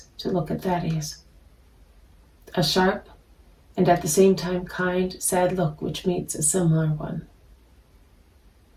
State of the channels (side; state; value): both; identical; correlation 1.00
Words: to look at Thaddeus. A sharp and at the same time kind, sad look which meets a similar one.